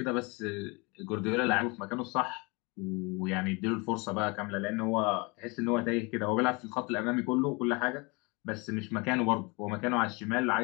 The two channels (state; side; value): quieter; right; 27.9 dB